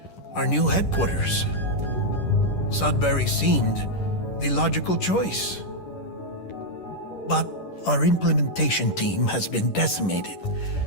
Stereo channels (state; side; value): late; right; 10 ms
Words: our new headquarters. Sudbury seemed the logical choice. But our implementation team has been decimated,